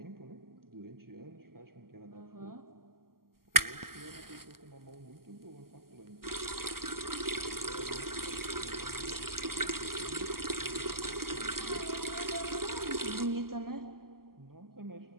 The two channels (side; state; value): left; late; 0.92 ms